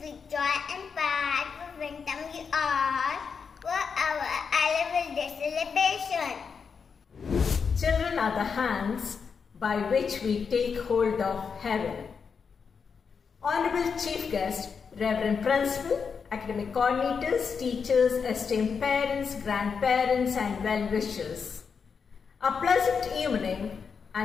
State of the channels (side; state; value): right; quieter; 5.9 dB